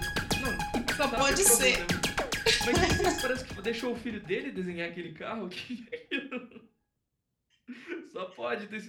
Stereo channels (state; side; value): identical; both; correlation 1.00